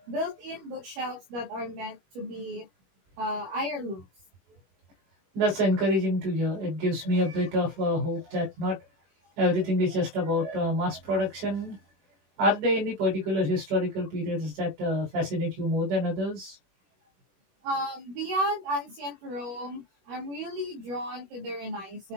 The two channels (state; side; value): late; left; 21 ms